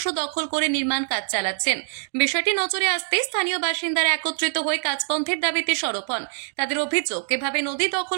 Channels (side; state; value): left; silent; digital silence